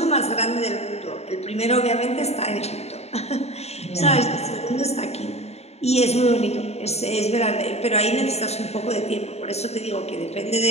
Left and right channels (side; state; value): right; late; 0.31 ms